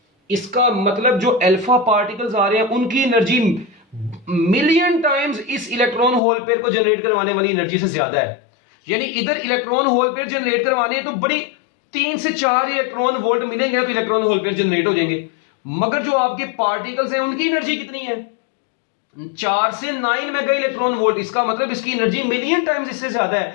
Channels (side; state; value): right; drops out; at 6.2 s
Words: इसका मतलब जो अल्फा पार्टिकल्स आ रहे हैं उनकी एनर्जी मिलियन टाइम्स इस इलेक्ट्रॉन होल पेयर को जनरेट करवाने वाली एनर्जी से ज्यादा है। यानी इधर इलेक्ट्रॉन होल पेयर जनरेट करवाने तो बड़ी 3 से 4 इलेक्ट्रॉन वोल्ट मिलेंगे तो इलेक्ट्रॉन होल पेयर जनरेट हो जाएंगे, मगर जो आपके पार्टिकल्स हैं उनकी एनर्जी कितनी है, 4 से 9 मेगा इलेक्ट्रॉन वोल्ट। इसका मतलब इसकी एनर्जी मिलियन टाइम्स इससे ज्यादा